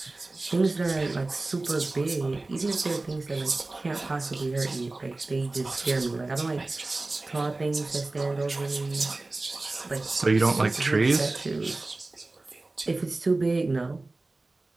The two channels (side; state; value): left; quieter; 3.2 dB